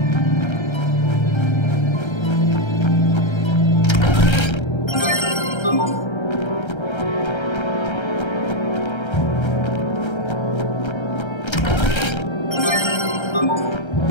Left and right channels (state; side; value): late; right; 1.3 ms